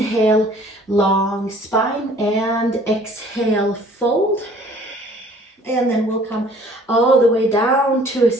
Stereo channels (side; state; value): both; normal; correlation 0.54